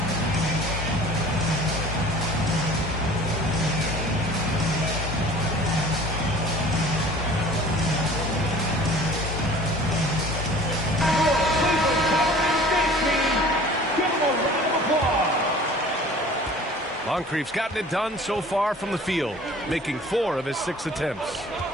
Moncrief's gotten it done so far from the field, making 4 of his 6 attempts.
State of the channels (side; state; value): both; normal; correlation 0.46